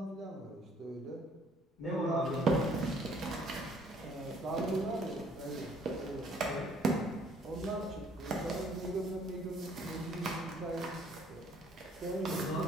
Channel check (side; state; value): both; normal; correlation 0.61